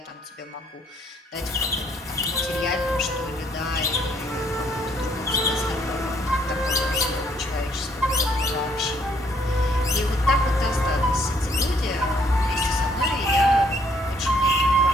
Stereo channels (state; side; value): normal; both; correlation 0.67